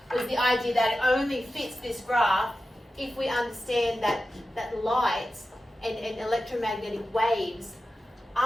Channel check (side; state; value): both; normal; correlation 0.93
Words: Was the idea that it only fits this graph if we understand that light and electromagnetic waves